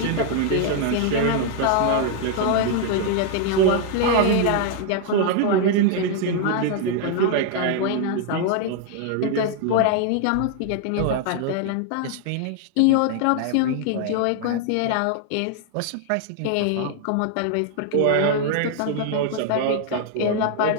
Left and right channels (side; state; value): both; different; correlation 0.00